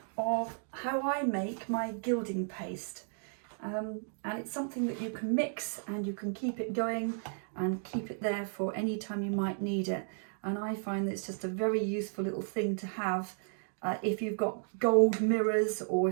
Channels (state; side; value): silent; left; 55 dB below the other